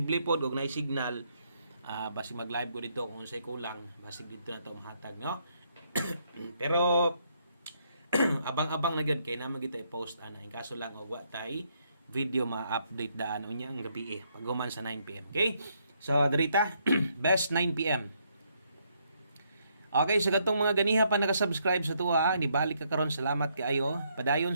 pod og nay signal basig mag-live ko dito kung unsay kulang basig dito na to mahatag no. Pero abang-abang na gyud kay naman kita i-post ana in kaso lang og wa tay video ma-update daan unya ang gabi paghuman sa 9 PM. Okay? So dirita best 9 PM. Okay, sa katong mga ganiha pa naka-subscribe sa tuwa, nibalik ka karon salamat kaayo. Padayon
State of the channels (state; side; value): inverted; both; correlation -0.73